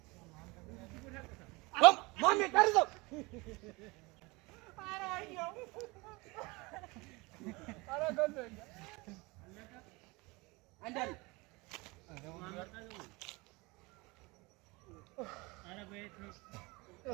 مامي ترزق عندنا انا بيت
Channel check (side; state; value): left; quieter; 24.8 dB